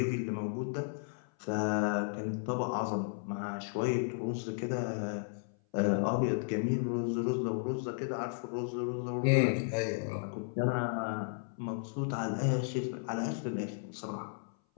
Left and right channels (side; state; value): right; silent; 55 dB below the other